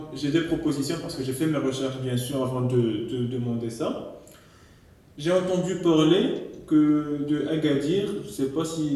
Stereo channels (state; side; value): identical; both; correlation 1.00